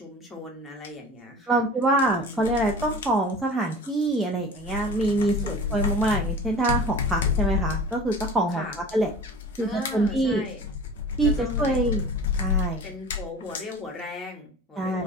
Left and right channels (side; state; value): both; normal; correlation 0.39